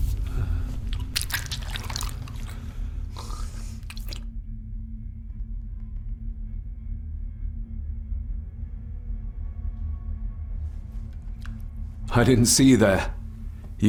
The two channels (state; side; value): identical; both; correlation 1.00